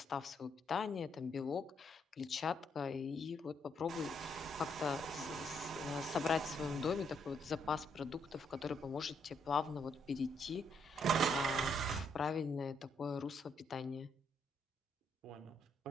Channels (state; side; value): normal; both; correlation 0.74